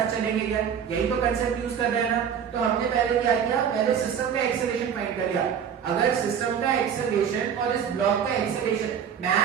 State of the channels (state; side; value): quieter; left; 8.1 dB